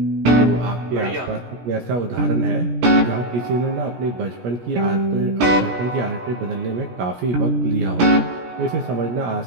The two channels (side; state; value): left; late; 17 ms